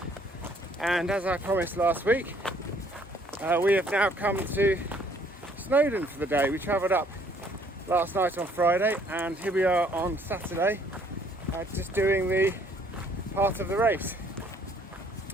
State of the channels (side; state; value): both; normal; correlation 0.62